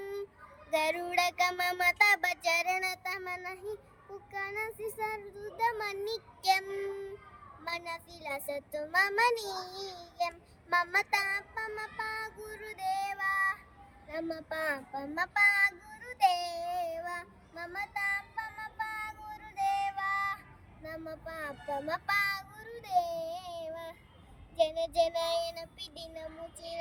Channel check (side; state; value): both; identical; correlation 1.00